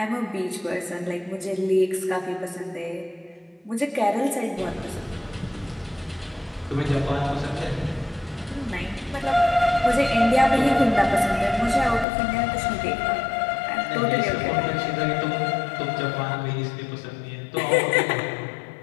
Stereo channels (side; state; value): right; drops out; at 12.1 s